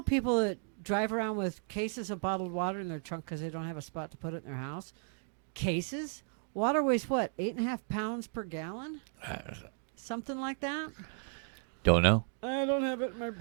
people that drive around with cases of bottled water in their trunk because they don't have a spot to put it in their house. Cases? Water weighs what, 8.5 pounds per gallon? Something like that? Don't know. I don't have it in my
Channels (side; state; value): left; silent; 55 dB below the other